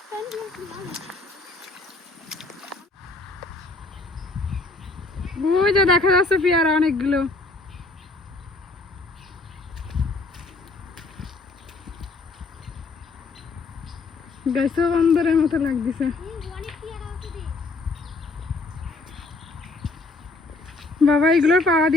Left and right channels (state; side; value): quieter; right; 3.4 dB